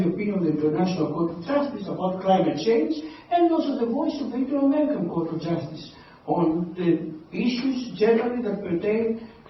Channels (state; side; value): identical; both; correlation 1.00